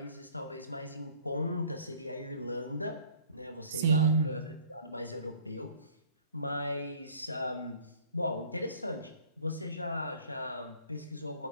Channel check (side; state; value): both; inverted; correlation -0.53